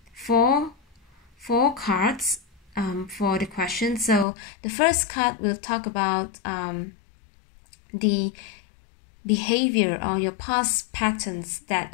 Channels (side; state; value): right; drops out; at 4.2 s